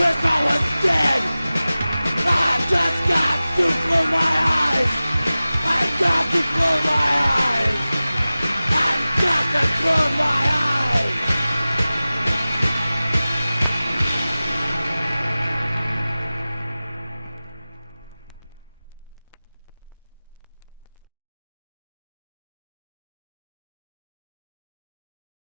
I was dead. I've just got to close my eyes. I've got to close my eyes. I've got to close my eyes.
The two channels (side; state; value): both; inverted; correlation -0.97